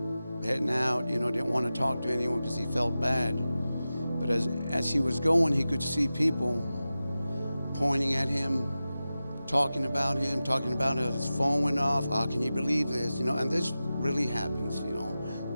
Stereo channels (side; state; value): both; inverted; correlation -0.94